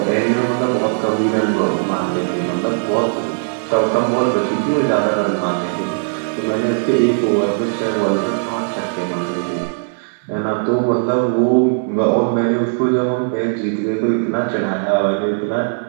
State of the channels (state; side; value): silent; left; 67 dB below the other